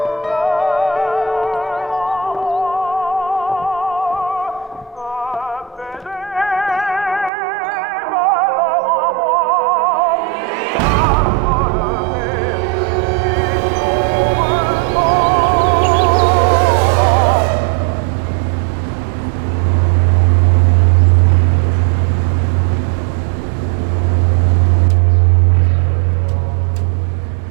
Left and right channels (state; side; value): drops out; left; at 7.3 s